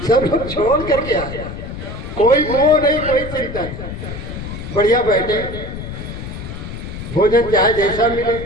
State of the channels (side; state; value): left; noise; rumble, 8 dB below the sound